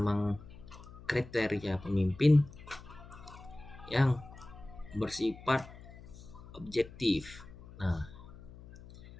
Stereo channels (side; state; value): left; noise; hum, 17 dB below the sound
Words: kriteria pemimpin yang bersifat objektif. Nah,